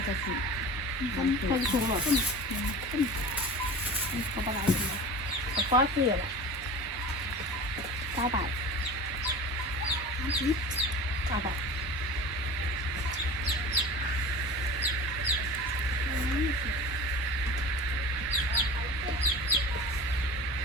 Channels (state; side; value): normal; both; correlation 0.35